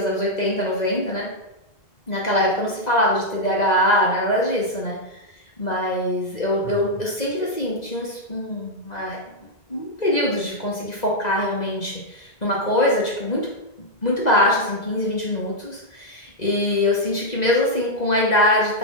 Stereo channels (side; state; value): right; late; 2.0 ms